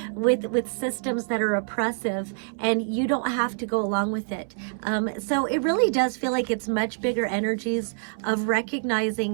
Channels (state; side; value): silent; left; 61 dB below the other